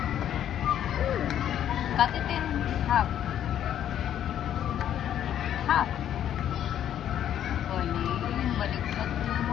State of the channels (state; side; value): quieter; right; 10.5 dB